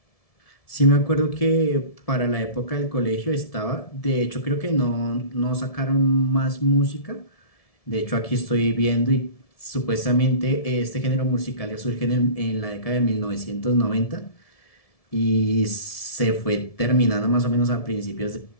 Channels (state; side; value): late; right; 1.7 ms